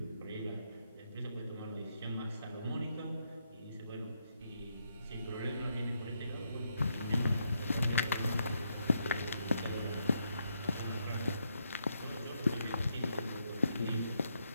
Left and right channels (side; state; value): both; inverted; correlation -0.79